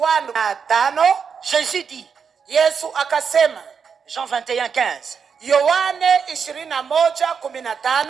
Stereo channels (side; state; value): left; quieter; 6.4 dB